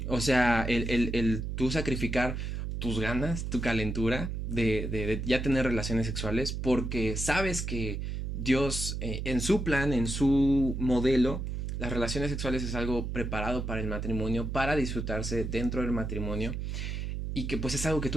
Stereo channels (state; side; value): noise; right; hum, 3 dB below the sound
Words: O sea, el tú sacrificar tus ganas, tu calentura de ya tener relaciones sexuales porque sabes que Dios en su plan, en su modelo, las relaciones sexuales es algo preparado para el matrimonio, para disfrutarse dentro del matrimonio y que pues es algo que